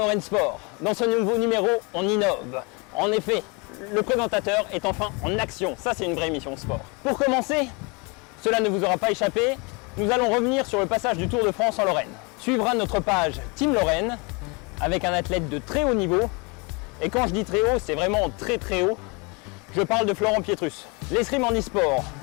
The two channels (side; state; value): right; quieter; 30.1 dB